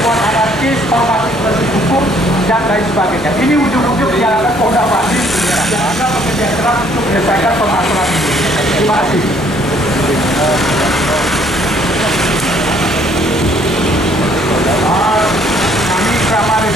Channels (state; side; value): normal; both; correlation 0.62